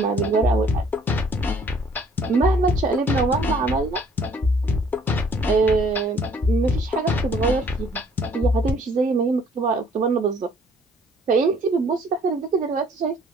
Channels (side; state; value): both; normal; correlation 0.59